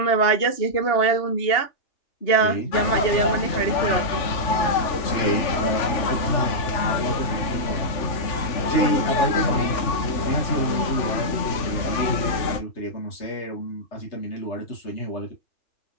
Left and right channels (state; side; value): late; right; 3.4 ms